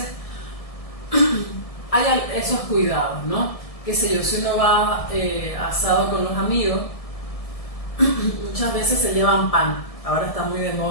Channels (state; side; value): late; right; 1.6 ms